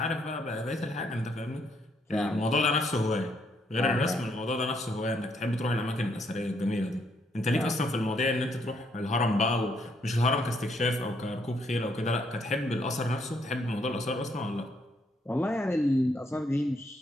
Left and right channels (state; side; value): normal; both; correlation 0.72